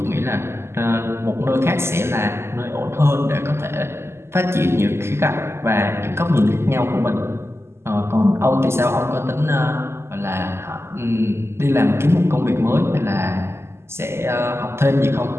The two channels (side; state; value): left; late; 0.12 ms